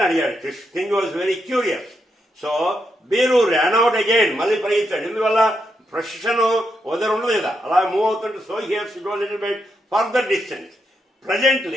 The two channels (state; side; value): normal; both; correlation 0.82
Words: అడిగాడు. king was very curious. So Biru ran out again. మళ్ళీ పరిగెత్తాడు. ఎందువల్ల ప్రొసెషన్ వదరు ఉండదు కదా, అలా మూవ్ అవుతుంటే. So he has to go a little bit further distance.